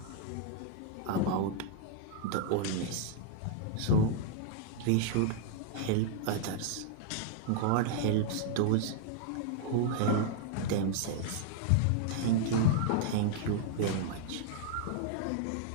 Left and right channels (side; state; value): both; different; correlation 0.00